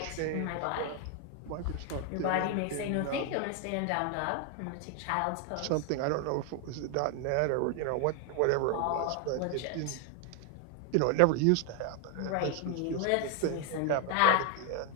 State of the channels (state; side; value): different; both; correlation 0.01